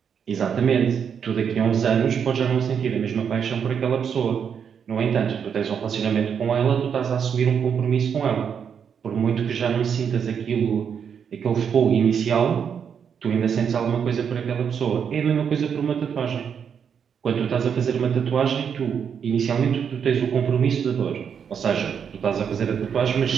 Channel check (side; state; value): left; quieter; 7.4 dB